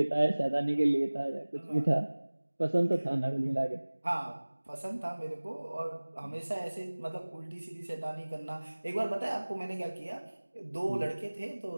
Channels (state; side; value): inverted; both; correlation -1.00